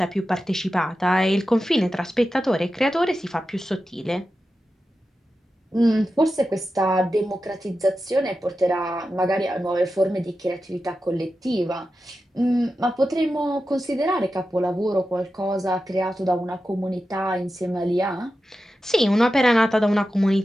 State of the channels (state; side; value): normal; both; correlation 0.91